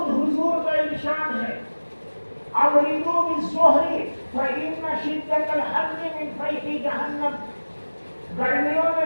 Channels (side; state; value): both; inverted; correlation -1.00